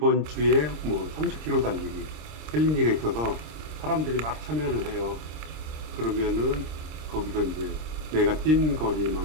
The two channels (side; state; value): left; late; 26 ms